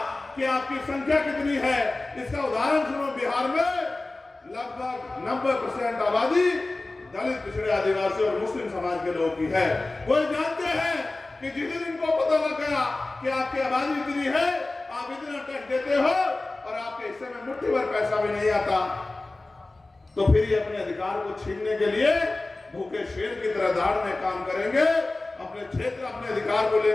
कि आपकी संख्या कितनी है, इसका उदाहरण सुनो, बिहार में लगभग 90% आबादी दलित पिछड़े आदिवासी और मुस्लिम समाज के लोगों की है। वो जानते हैं कि जिस दिन इनको पता लग गया कि आपकी आबादी इतनी है, आप इतना टैक्स देते हो और आपके हिस्से में मुट्ठी भर पैसा भी नहीं आता, तो फिर ये अपने अधिकार को छीनने के लिए भूखे शेर की तरह दहाड़ने काम करेंगे। अपने क्षेत्र, अपने अधिकार को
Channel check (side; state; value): right; quieter; 3.0 dB